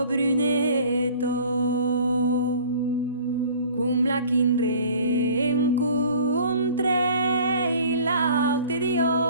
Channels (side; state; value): both; inverted; correlation -0.49